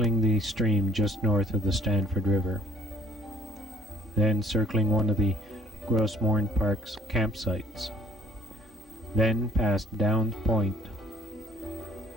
the stream just north of the Stanford River, then circling one of the Gros Morne Park's campsites, then past Downs Point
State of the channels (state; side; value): normal; both; correlation 0.57